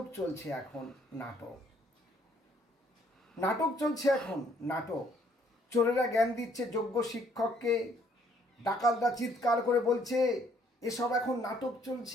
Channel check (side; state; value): both; normal; correlation 0.65